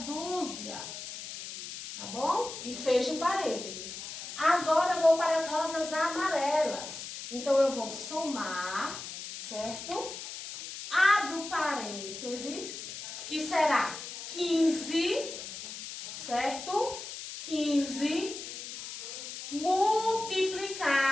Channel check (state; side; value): noise; left; hiss, 9 dB below the sound